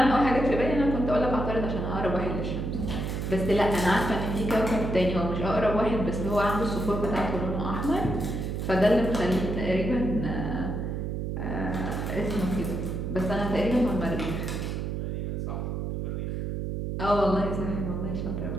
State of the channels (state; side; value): noise; right; hum, 3 dB below the sound